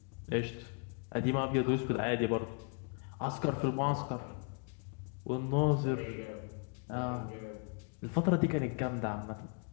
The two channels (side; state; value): right; quieter; 39.0 dB